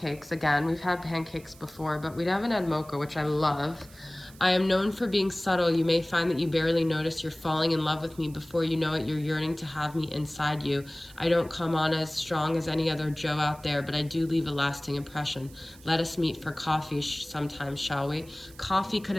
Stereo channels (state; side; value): noise; right; hiss, 23 dB below the sound